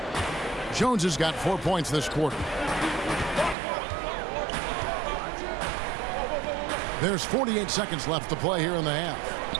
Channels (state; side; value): drops out; left; at 3.6 s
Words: Jones has got 4 points this quarter. There's 48 seconds left to play here in the half.